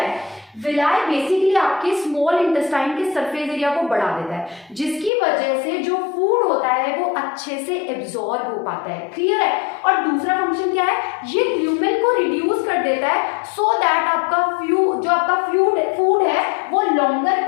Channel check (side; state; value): right; drops out; at 5.1 s